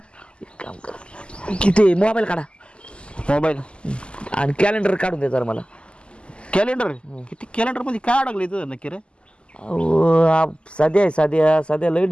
एक काम कर किती मोबाईल काढा मोबाईल आणि कॅलेंडर काढून दे जरा मला कॅलेंडर किती कॅलेंडर मध्ये काय अडकलं तुझं नक्की रे अहो साध्या लय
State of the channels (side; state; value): right; late; 0.052 ms